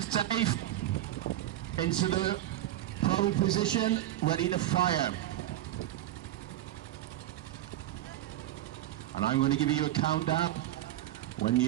safe, into the prone position, ready to fire. And I'm going to give you a countdown. When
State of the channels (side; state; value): left; quieter; 13.6 dB